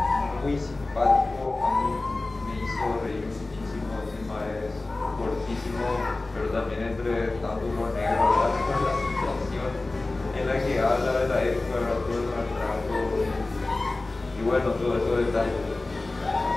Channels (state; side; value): quieter; right; 3.1 dB